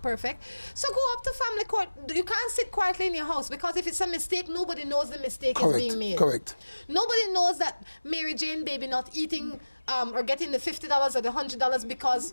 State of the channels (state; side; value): inverted; both; correlation -1.00